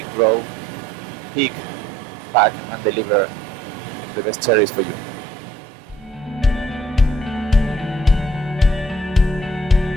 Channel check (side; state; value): both; normal; correlation 0.62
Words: grow, pick, pack and deliver the best cherries for you.